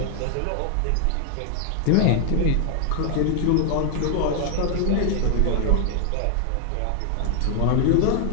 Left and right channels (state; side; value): different; both; correlation 0.00